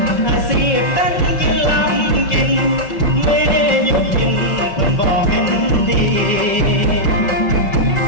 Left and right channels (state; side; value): late; right; 5.2 ms